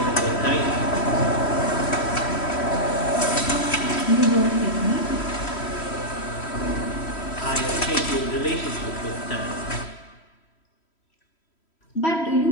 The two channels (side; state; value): right; late; 3.1 ms